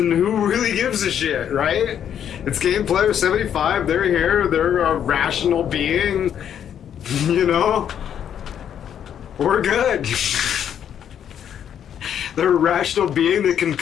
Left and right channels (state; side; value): quieter; right; 9.2 dB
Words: who really gives a shit, right? It's Game Player 75, they're here, they're a rational being, you know? We're good. They're a rational being that can